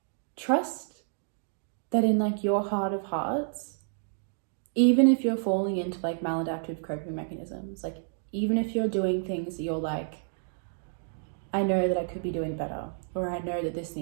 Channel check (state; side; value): silent; left; digital silence